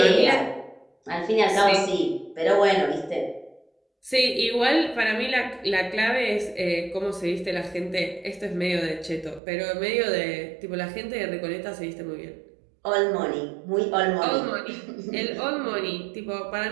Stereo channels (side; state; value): left; drops out; at 9.4 s